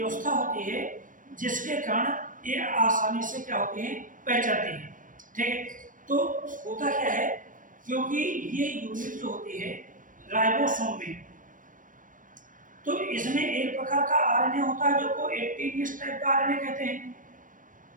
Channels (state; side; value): late; left; 0.38 ms